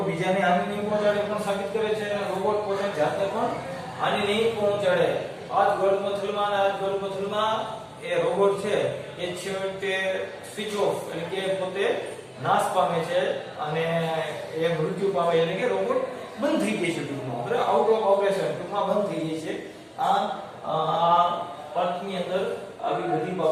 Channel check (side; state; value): both; identical; correlation 1.00